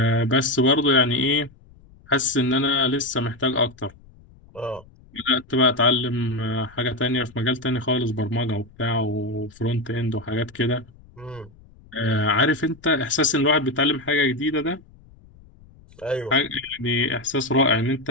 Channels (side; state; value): left; noise; rumble, 25 dB below the sound